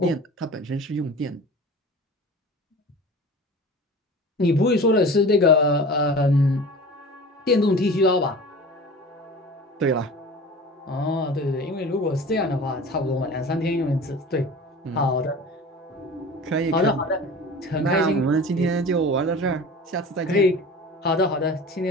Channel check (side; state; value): both; normal; correlation 0.38